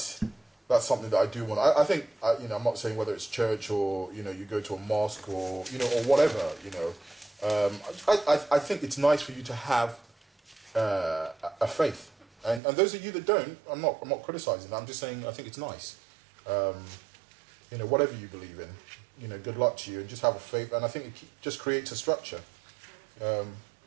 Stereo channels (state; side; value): drops out; left; at 12.6 s